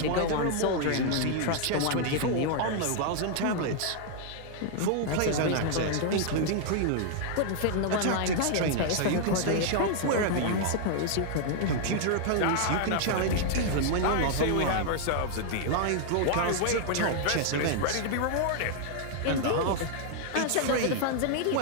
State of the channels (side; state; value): both; different; correlation 0.00